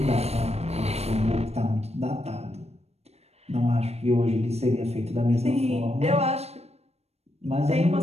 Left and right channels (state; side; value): late; left; 0.31 ms